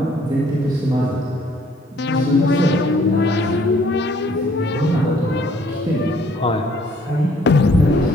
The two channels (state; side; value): normal; both; correlation 0.61